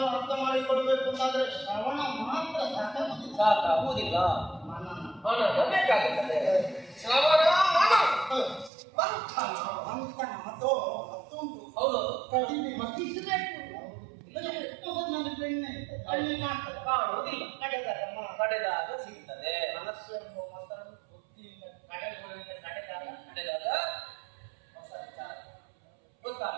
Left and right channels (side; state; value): left; drops out; at 8.7 s